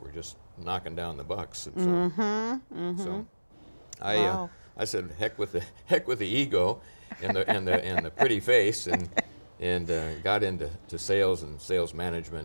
just knocking down the bucks. And so, Wow. I said, heck with the ego and the pretty face, and got into sales and sales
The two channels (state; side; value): inverted; both; correlation -1.00